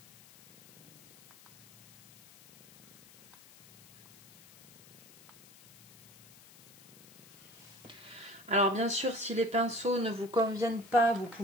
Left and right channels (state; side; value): noise; left; hiss, 22 dB below the sound